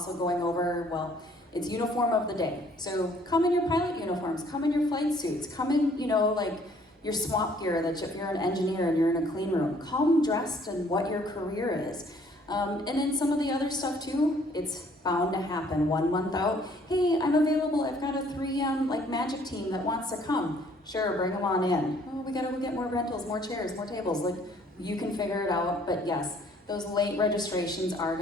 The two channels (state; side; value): normal; both; correlation 0.60